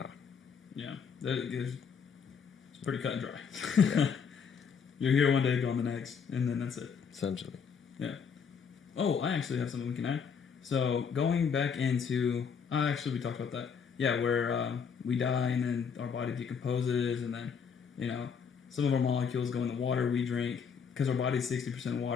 Yeah. It's pretty cut and dry. Yeah. You're here one day, gone the next, and then that's it. Essentially. Yeah. Oh, I actually have something we can add. So, going back into... actually, we talked about that. Yeah, where we die, and then our body decomposes, and then, some of our molecules go in the water we drink, because our body's 60%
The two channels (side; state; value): right; quieter; 6.5 dB